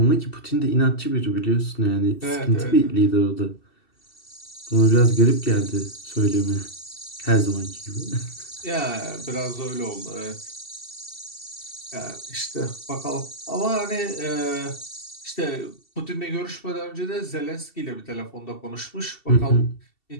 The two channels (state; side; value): late; right; 2.7 ms